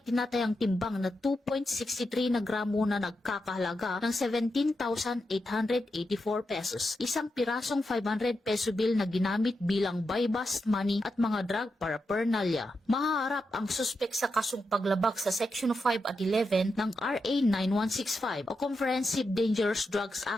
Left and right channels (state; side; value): normal; both; correlation 0.87